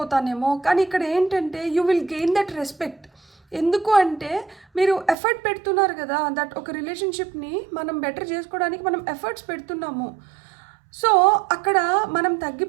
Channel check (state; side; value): drops out; left; at 5.2 s